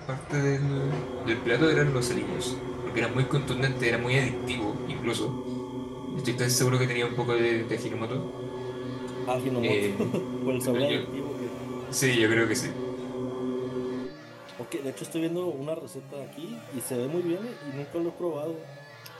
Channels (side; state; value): both; identical; correlation 1.00